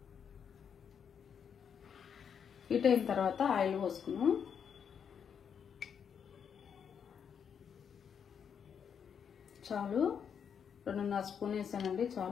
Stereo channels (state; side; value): quieter; right; 7.4 dB